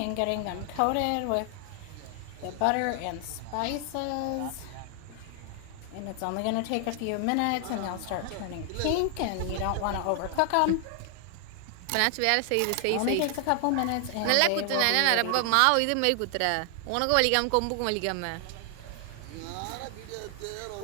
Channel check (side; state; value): both; different; correlation 0.00